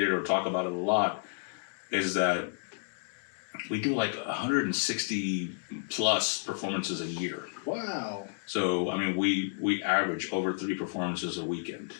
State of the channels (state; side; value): silent; right; digital silence